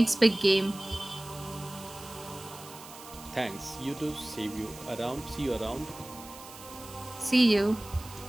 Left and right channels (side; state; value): right; noise; hiss, 17 dB below the sound